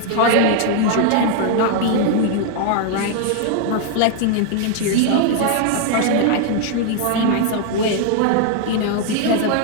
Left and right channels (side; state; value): both; different; correlation 0.00